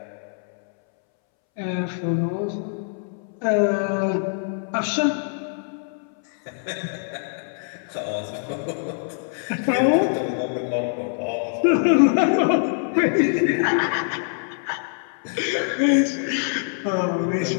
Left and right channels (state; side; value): silent; right; 63 dB below the other